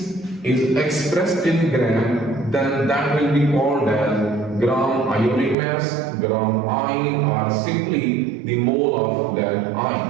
is expressed in gram, then that will be called as gram ionic mass, gram ion, or simply the mole of that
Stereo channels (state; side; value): drops out; left; at 5.6 s